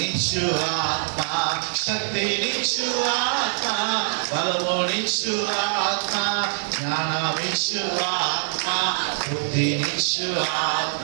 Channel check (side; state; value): left; silent; digital silence